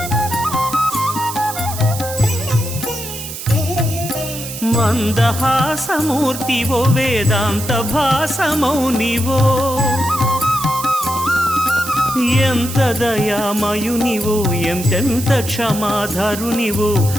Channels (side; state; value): right; noise; hiss, 9 dB below the sound